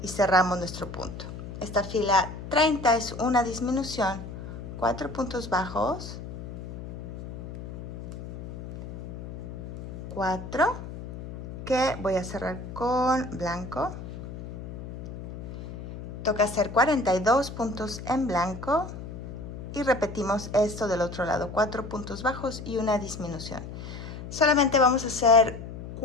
y cerramos nuestro punto. Esta fila 30 es una disminución, 4 puntos bajos, 4, que voy a cerrar con blanco. Toca hacer 42 puntos en blanco y repetimos esto del otro lado, 4 puntos bajos y una disminución. Solamente vamos a hacer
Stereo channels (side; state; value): left; noise; hum, 10 dB below the sound